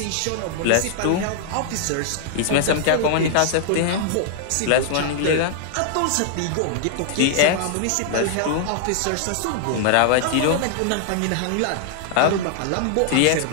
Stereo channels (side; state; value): both; different; correlation -0.01